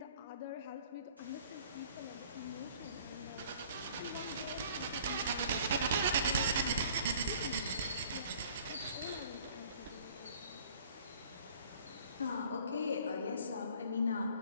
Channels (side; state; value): both; inverted; correlation -0.53